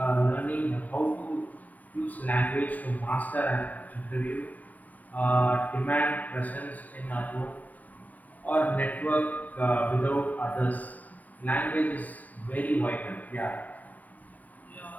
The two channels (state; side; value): late; right; 0.077 ms